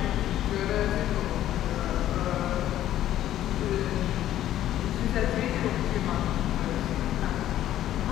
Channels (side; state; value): right; quieter; 12.6 dB